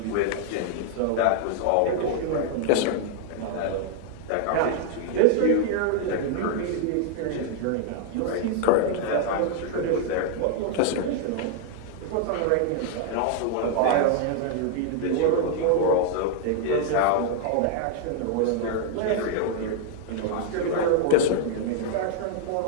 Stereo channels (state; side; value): different; both; correlation 0.00